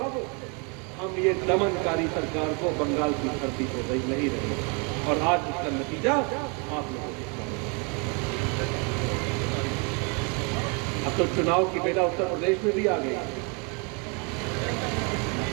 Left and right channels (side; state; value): left; quieter; 33.8 dB